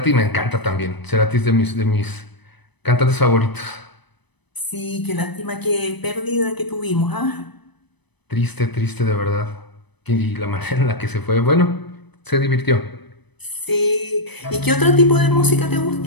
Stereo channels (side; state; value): right; late; 0.99 ms